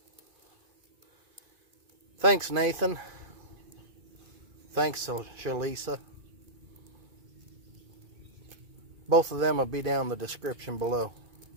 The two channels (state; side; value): late; left; 2.5 ms